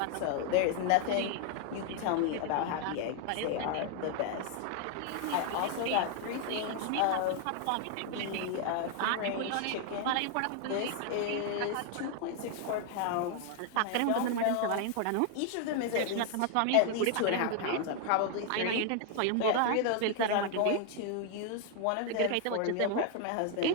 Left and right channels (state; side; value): different; both; correlation 0.00